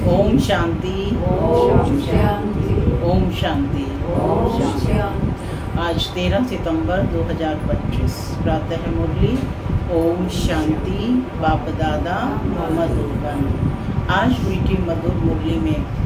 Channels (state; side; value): identical; both; correlation 1.00